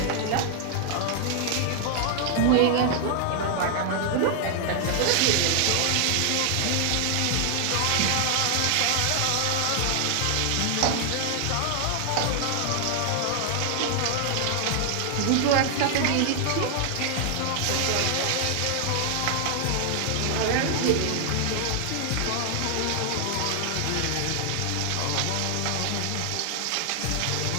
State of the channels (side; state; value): both; different; correlation 0.00